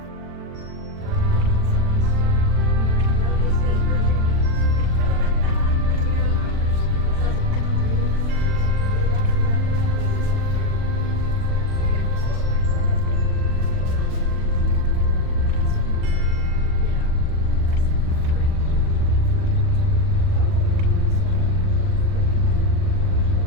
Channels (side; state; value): left; late; 40 ms